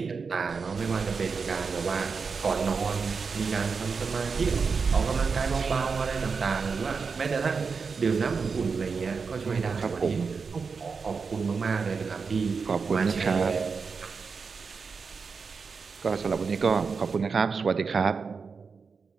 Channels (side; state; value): left; quieter; 5.2 dB